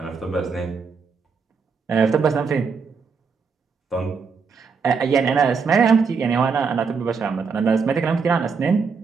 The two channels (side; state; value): left; quieter; 5.3 dB